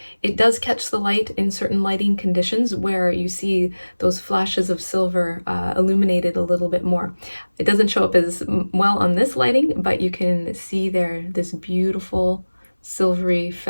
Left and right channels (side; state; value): both; inverted; correlation -1.00